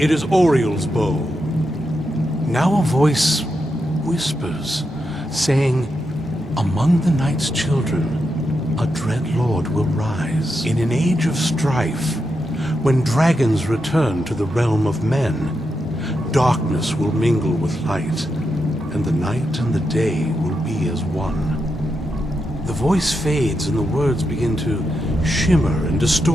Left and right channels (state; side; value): normal; both; correlation 0.85